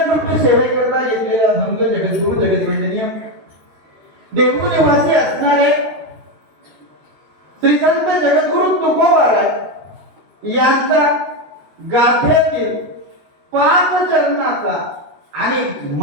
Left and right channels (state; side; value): late; left; 13 ms